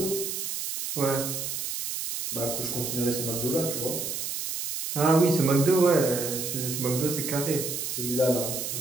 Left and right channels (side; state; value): right; noise; hiss, 4 dB below the sound